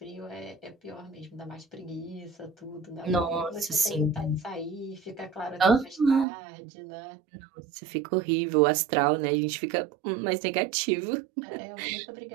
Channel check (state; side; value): drops out; left; at 6.2 s